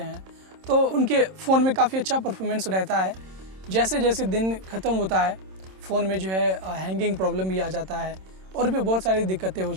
हैं तो उनके फ़ोन में काफ़ी अच्छा परफॉर्मेंस रहता है। जैसे जैसे दिन ख़त्म होता है फ़ोन में जो है हैंगिंग प्रॉब्लम भी आ जाता है और भी बहुत सारी दिक्कतें हो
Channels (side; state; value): left; late; 26 ms